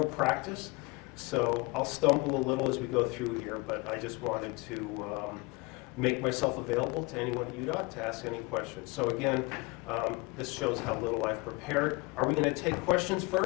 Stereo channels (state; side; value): quieter; right; 25.6 dB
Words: practice. So I'll stumble a little as we go through here, but I just wanted to make myself available to anyone at UDOT to ask any questions. So again, this shows how little I've prepared. Are we going to take questions